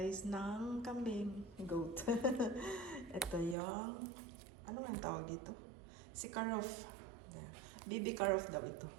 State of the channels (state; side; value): drops out; left; at 3.6 s